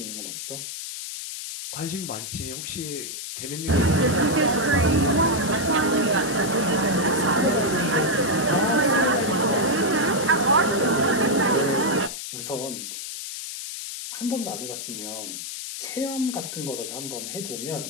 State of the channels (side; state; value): left; noise; hiss, 7 dB below the sound